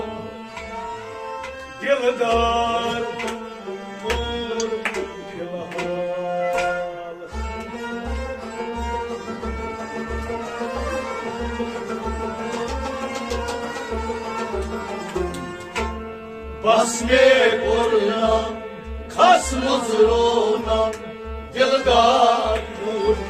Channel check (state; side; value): identical; both; correlation 1.00